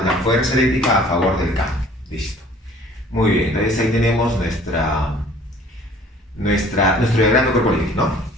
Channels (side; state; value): both; normal; correlation 0.52